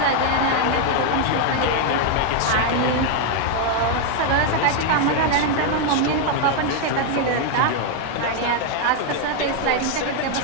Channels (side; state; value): both; different; correlation 0.00